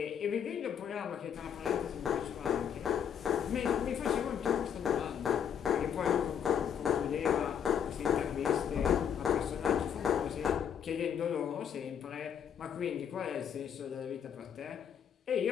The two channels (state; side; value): quieter; right; 8.4 dB